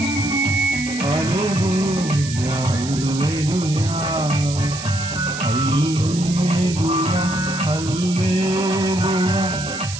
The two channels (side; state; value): right; noise; hiss, 10 dB below the sound